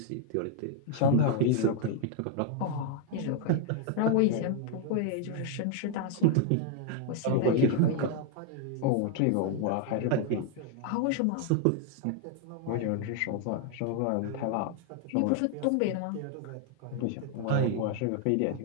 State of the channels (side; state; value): both; different; correlation 0.00